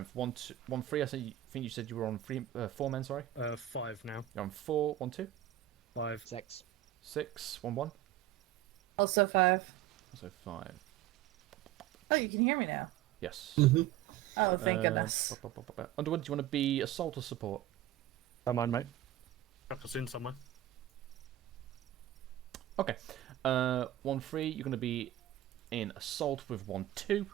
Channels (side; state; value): left; quieter; 13.0 dB